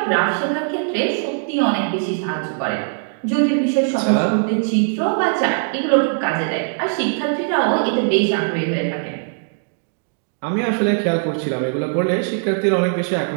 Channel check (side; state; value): left; silent; digital silence